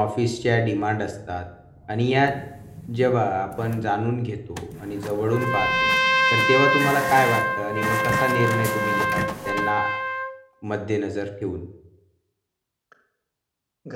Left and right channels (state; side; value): identical; both; correlation 1.00